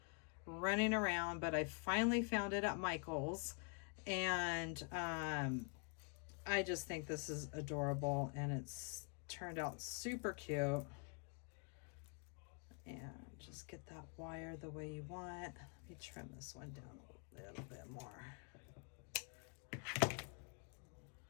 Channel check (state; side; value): quieter; right; 36.4 dB